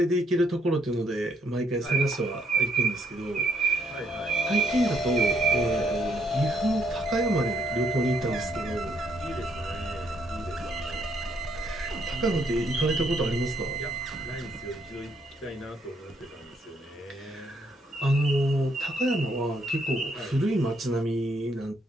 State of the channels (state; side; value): normal; both; correlation 0.71